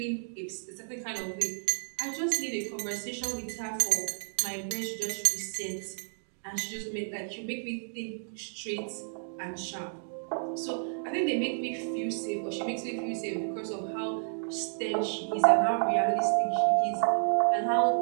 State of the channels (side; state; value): left; silent; digital silence